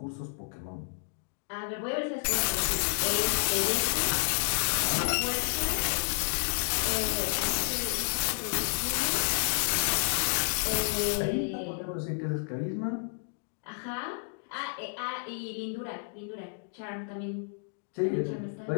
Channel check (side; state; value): right; silent; digital silence